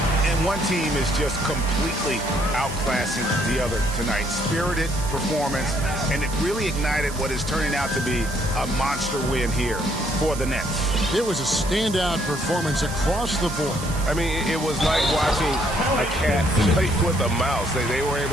And one team is just completely outclassing the other tonight. Spirited performance, and it really ignited what is turning out to be a monster win here for the Nets. It was a standout performance across the board. I mean, it was like watching a cat play with a mouse. They were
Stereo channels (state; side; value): noise; right; hiss, 12 dB below the sound